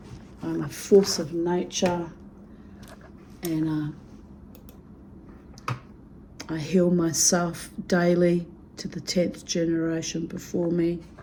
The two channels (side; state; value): both; identical; correlation 1.00